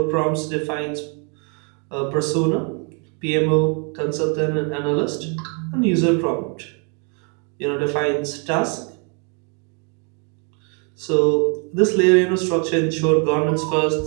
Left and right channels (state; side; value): quieter; left; 37.3 dB